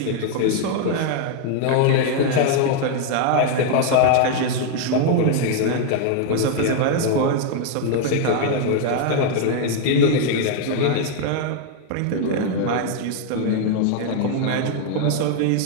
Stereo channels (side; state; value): both; different; correlation 0.00